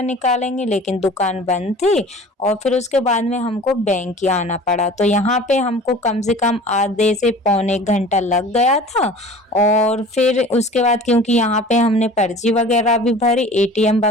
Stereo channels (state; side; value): normal; both; correlation 0.43